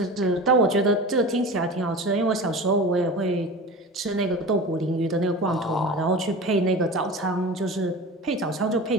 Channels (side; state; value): both; normal; correlation 0.33